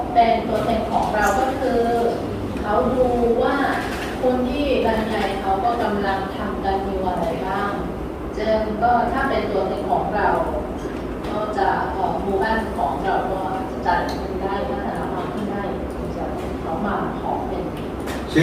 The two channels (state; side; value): identical; both; correlation 1.00